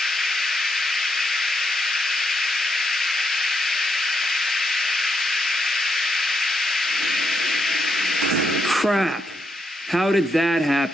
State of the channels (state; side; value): normal; both; correlation 0.80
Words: Crap! How did that